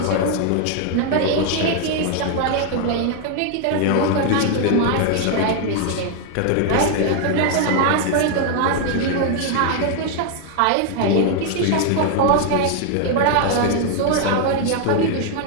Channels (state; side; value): different; both; correlation 0.00